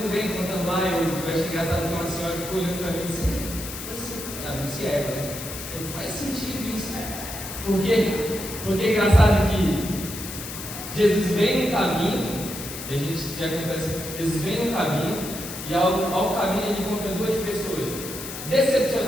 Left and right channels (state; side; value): noise; left; hiss, 9 dB below the sound